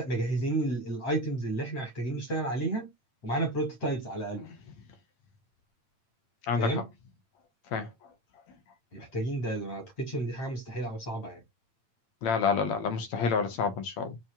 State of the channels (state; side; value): late; right; 8.8 ms